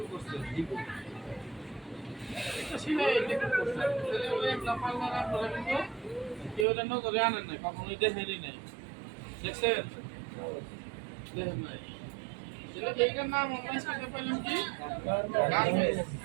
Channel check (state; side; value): drops out; left; at 6.7 s